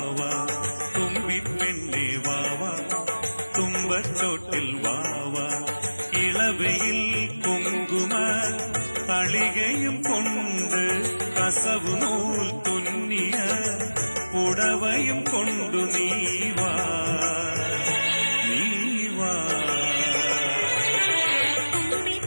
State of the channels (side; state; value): both; inverted; correlation -1.00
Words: തുമ്പിപ്പെണ്ണേ വാവാ തുമ്പച്ചോട്ടിൽ വാവാ ഇളവയിൽ കുങ്കുമ തളികയും കൊണ്ട് കസവു നൂൽ തുന്നിയ പുടവയും കൊണ്ടു നീവാ നീവാ